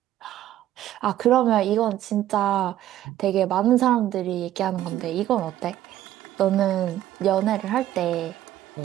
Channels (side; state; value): left; quieter; 13.0 dB